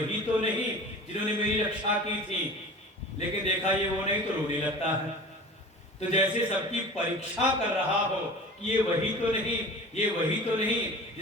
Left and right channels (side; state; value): both; normal; correlation 0.39